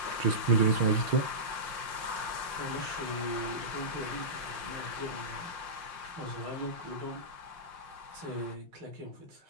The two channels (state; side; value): late; left; 5.5 ms